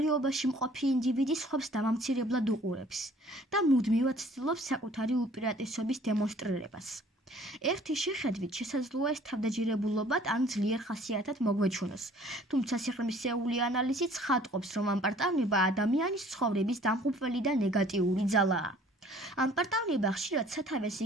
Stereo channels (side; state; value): both; normal; correlation 0.54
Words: მყოფი ინდივიდი სხვებს დამამცირებლად უყურებს და მუდმივად ცდილობს საკუთარი უპირატესობის დემონსტრირებას. ერთი შეხედვით შესაძლოა ეს თავდაჯერებულობად ან ძლიერ ხასიათად მოგვეჩვენოს, თუმცა სიღრმისეული ანალიზი ცხადყოფს, რომ ამპარტავნება ადამიანის ცხოვრების დამღუპველი და ნეგატიური ძალაა. ამპარტავნება ხშირად სათავეს